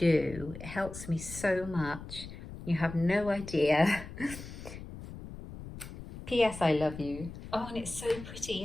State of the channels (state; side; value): noise; left; rumble, 12 dB below the sound